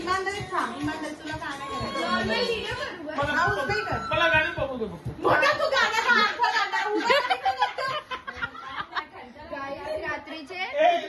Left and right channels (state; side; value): identical; both; correlation 1.00